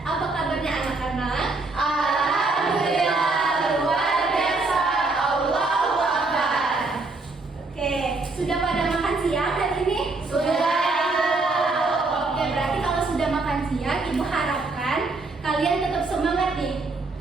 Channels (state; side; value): quieter; left; 3.5 dB